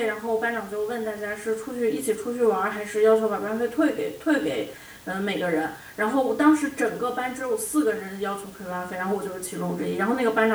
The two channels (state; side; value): identical; both; correlation 1.00